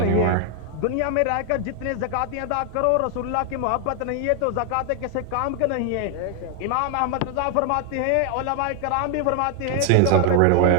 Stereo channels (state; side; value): different; both; correlation 0.00